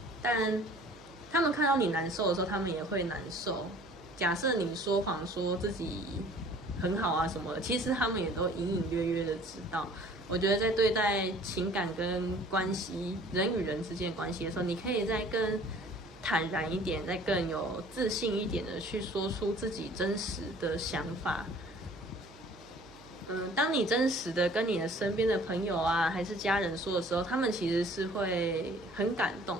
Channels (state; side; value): noise; right; hum, 22 dB below the sound